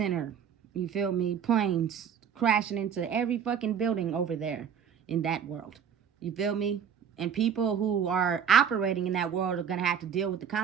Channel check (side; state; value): left; quieter; 7.8 dB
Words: You feel me? Planes crashing into every fucking building over there in that world. You feel me? And people who are operating in that world are going to have to deal with the